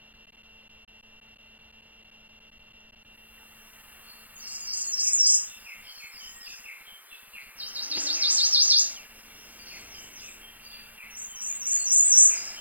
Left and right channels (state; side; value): late; left; 0.081 ms